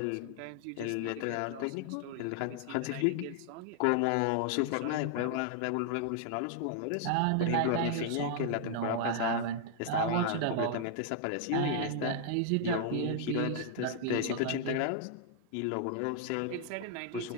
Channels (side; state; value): both; different; correlation 0.00